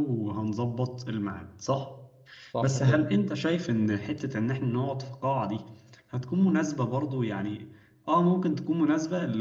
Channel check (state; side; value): identical; both; correlation 1.00